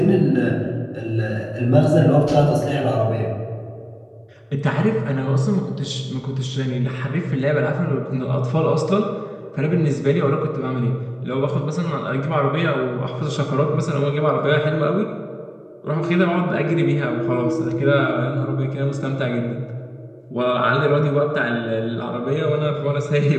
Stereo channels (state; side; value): identical; both; correlation 1.00